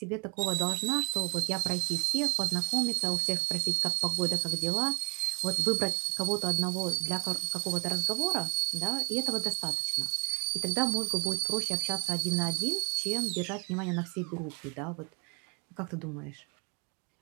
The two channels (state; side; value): quieter; left; 35.4 dB